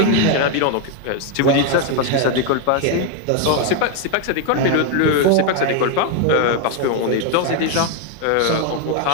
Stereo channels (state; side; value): different; both; correlation 0.01